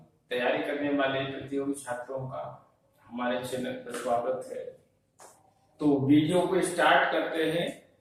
तैयारी करने वाले प्रतियोगी छात्रों का हमारे चैनल पर स्वागत है। तो वीडियो को स्टार्ट करते हैं।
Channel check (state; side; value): identical; both; correlation 1.00